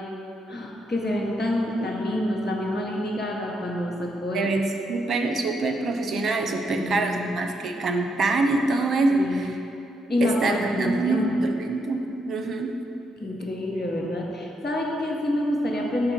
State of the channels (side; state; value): both; normal; correlation 0.79